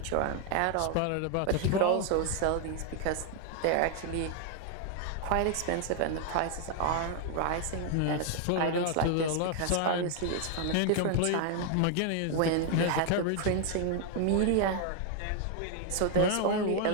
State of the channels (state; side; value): different; both; correlation 0.00